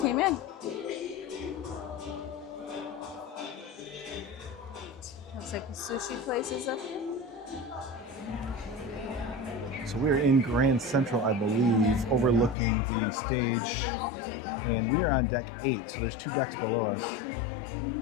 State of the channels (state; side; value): drops out; right; at 12.6 s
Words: in. Looks like the sushi place is up here. So we're in Grand Central, I believe, overlooking the stage, and we are on deck 8. So there's 2 decks below us.